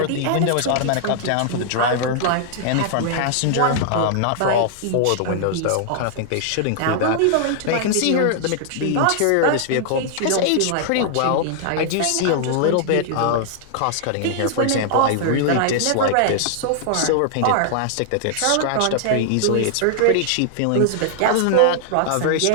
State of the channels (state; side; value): different; both; correlation -0.01